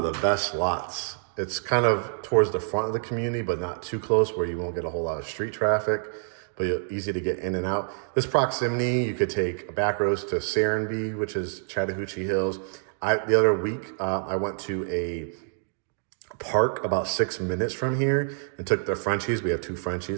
the best lots. It's kind of towards the front of the community, but not too close where you won't get a whole lot of street traffic, but easy to get in and out. This proximity, you could take a back roads to Serenbe, which is Chattahoochee Hills. The other week, I went to a park about 6 minutes from here and took the Frenchies. We have 2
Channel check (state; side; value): silent; left; digital silence